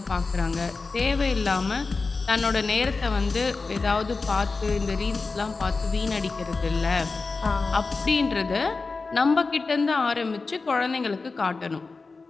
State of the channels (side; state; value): right; quieter; 4.0 dB